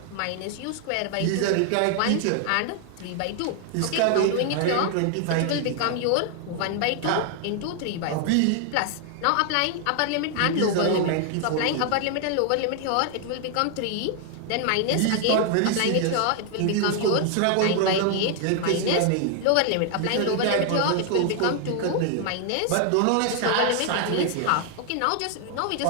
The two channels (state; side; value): different; both; correlation 0.00